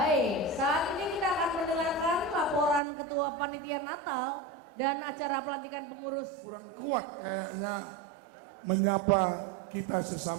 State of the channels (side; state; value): left; drops out; at 2.8 s